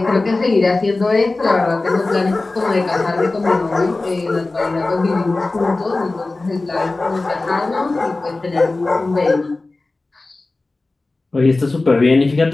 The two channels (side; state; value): right; quieter; 3.2 dB